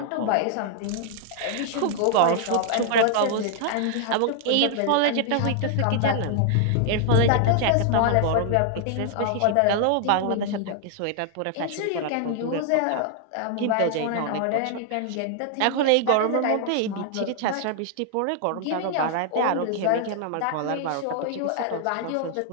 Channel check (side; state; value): both; different; correlation 0.00